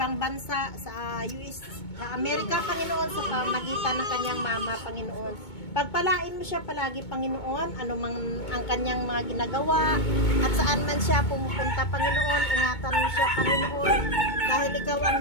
bansa, sa US, sa Amerika, Panginoon, sa pamagitan ng kanyang mama, Panginoon. Pagpalain mo siya palagi, Panginoon, ano mang ang kanyang mga ginagawa, at saan man siya pumupunta, Panginoon, ingatan mo siya, Panginoon, dahil ikaw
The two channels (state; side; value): late; right; 2.2 ms